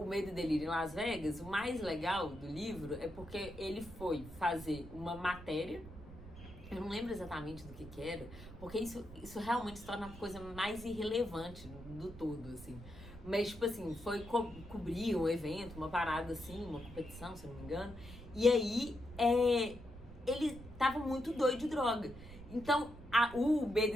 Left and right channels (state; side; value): noise; right; rumble, 15 dB below the sound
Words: Medo e Delírio em Las Vegas, o mais legal do livro é porque ele foi fazer uma matéria, eu não lembro exatamente do que era, porque isso realmente se torna a coisa mais irrelevante do todo, assim. Mas, tipo assim, foi cobrir um evento, uma parada assim, uma competição, se eu não me engano, e aí ele tava muito doido de droga. Então, o Medo